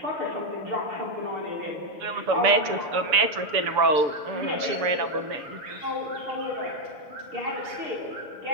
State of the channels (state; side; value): late; left; 6.9 ms